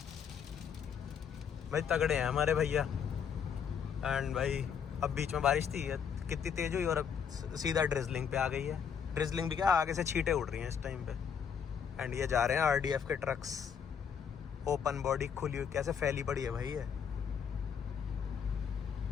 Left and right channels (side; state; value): right; quieter; 7.4 dB